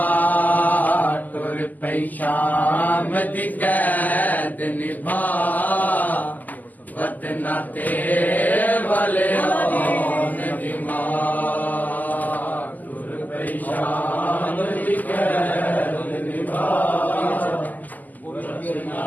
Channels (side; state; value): right; late; 0.082 ms